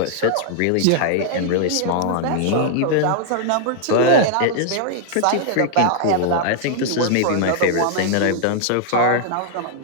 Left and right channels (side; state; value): both; different; correlation -0.01